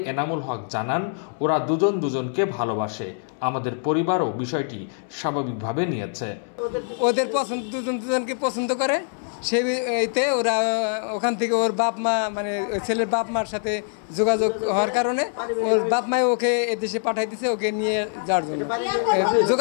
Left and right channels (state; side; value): silent; right; 62 dB below the other